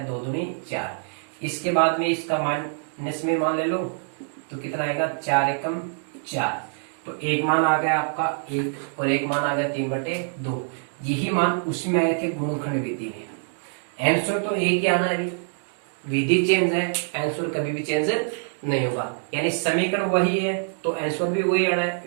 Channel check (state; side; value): silent; left; digital silence